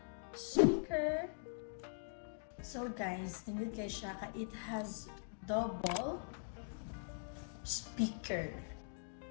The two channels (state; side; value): silent; right; digital silence